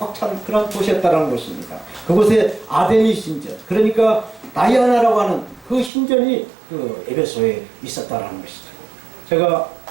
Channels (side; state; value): left; drops out; at 5.9 s